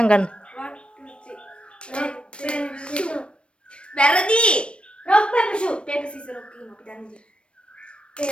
ගන්න. වැරදි. rock paper shoot. paper scissors rock කියමු අපි දන්නේ.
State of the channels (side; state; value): right; late; 0.058 ms